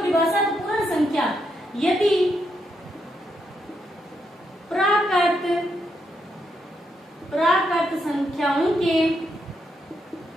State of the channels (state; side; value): normal; both; correlation 0.80